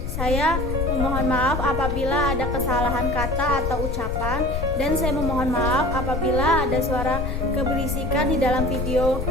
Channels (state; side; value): noise; left; rumble, 3 dB below the sound